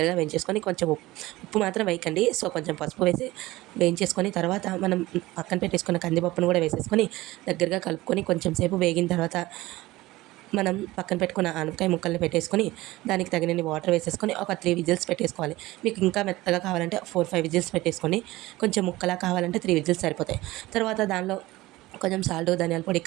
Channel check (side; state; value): left; quieter; 18.6 dB